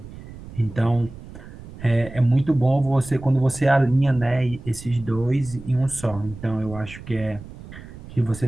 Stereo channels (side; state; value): right; noise; rumble, 15 dB below the sound